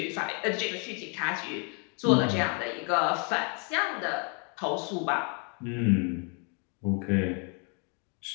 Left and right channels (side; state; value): right; quieter; 37.1 dB